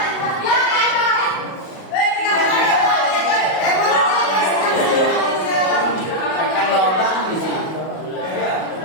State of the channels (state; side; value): late; right; 37 ms